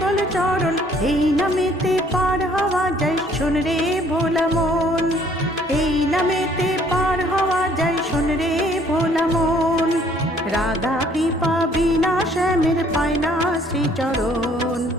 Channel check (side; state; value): both; normal; correlation 0.61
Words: চরণ। এই নামেতে পার হওয়া যায় শোন রে ভোলা মন, এই নামেতে পার হওয়া যায় শোন রে ভোলা মন। রাধা কৃপা বিনা শ্যামের পায় না শ্রীচরণ,